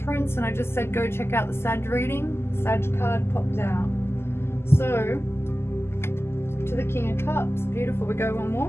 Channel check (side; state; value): right; late; 0.12 ms